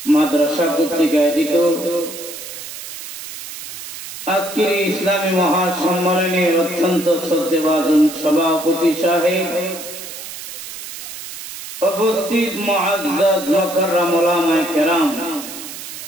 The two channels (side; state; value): right; noise; hiss, 11 dB below the sound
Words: মাদ্রাসা কর্তৃক আয়োজিত আজকের ইসলামী মহাসম্মেলনের অত্যন্ত শ্রদ্ধেভাজন সভাপতি সাহেব, উপস্থিত মুআজ্জাজ মুকাররম উলামায়ে কেরাম,